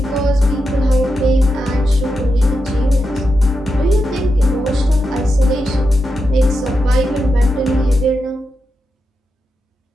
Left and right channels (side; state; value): both; normal; correlation 0.87